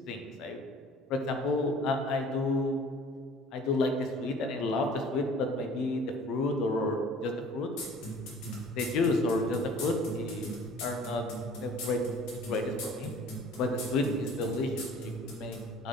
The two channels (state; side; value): normal; both; correlation 0.49